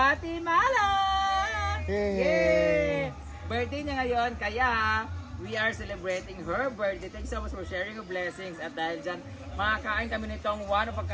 Yay! Birthday niya ngayon, kaya we are celebrating her birthday. Thanks so much for sharing your blessings. At dahil dyan, makakain kami nitong one of a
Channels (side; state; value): both; identical; correlation 1.00